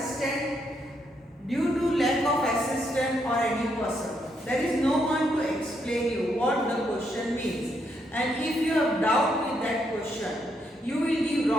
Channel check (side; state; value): both; normal; correlation 0.77